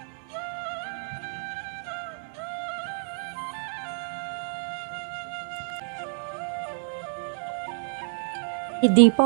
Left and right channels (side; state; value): left; silent; digital silence